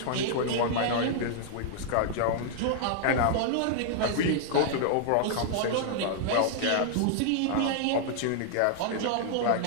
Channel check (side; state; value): both; different; correlation -0.01